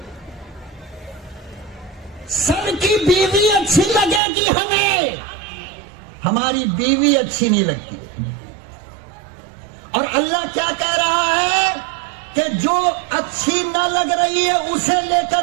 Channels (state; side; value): drops out; left; at 4.2 s